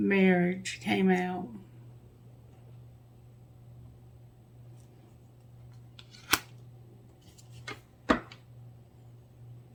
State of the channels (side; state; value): both; identical; correlation 1.00